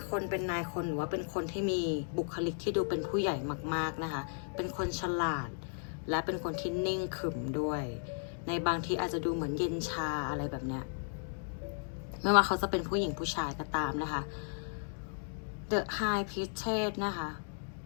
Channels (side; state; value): right; silent; digital silence